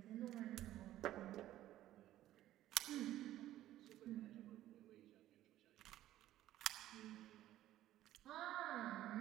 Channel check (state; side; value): quieter; left; 13.7 dB